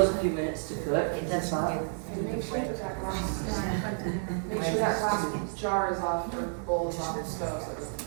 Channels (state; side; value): silent; left; digital silence